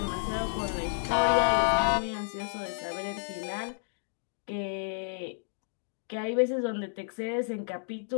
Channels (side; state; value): right; silent; digital silence